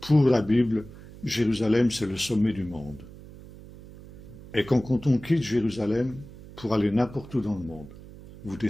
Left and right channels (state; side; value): noise; right; hum, 17 dB below the sound